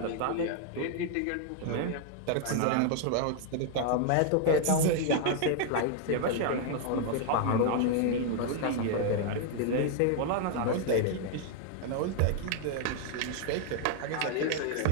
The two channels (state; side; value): different; both; correlation 0.00